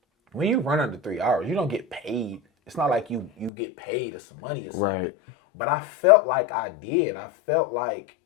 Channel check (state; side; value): drops out; right; at 3.5 s